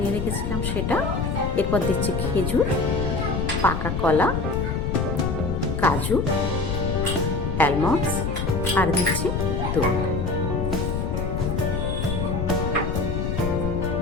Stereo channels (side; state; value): left; noise; rumble, 1 dB below the sound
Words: রেখেছিলাম সেটা। এরপর দিচ্ছি খেজুর, পাকা কলা, কাজু, অ্যালমন্ডস আর দিচ্ছি দুধ।